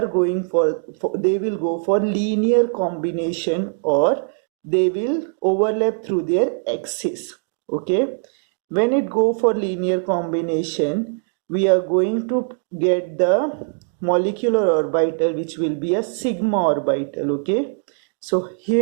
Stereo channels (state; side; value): silent; left; 65 dB below the other